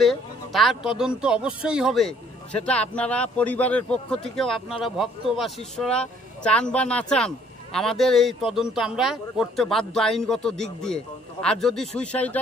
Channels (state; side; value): normal; both; correlation 0.61